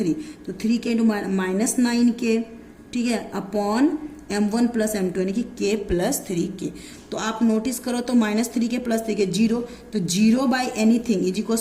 तो 3k इंटू -9k, ठीक है, अपॉन m1 प्लस m2 यानी कि k प्लस 3k। तो आप नोटिस करो तो -3k प्लस 3k 0, तो 0 by anything is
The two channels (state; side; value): identical; both; correlation 1.00